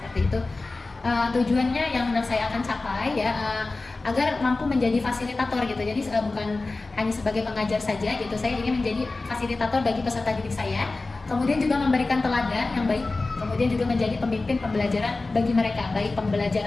itu. Tujuannya yang saya akan capai ya agar mampu menjadi fasilitator gitu. Jadi bukan hanya sebagai pengajar saja gitu. Saya ingin menjadi fasilitator bagi peserta didik saya. Kemudian juga memberikan teladan yang baik. Kemudian juga menjadi pemimpin pembelajaran bagi mereka, baik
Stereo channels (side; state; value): right; quieter; 3.4 dB